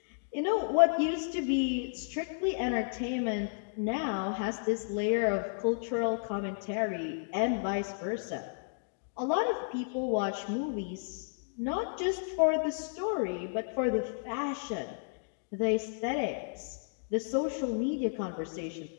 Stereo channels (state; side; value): silent; right; digital silence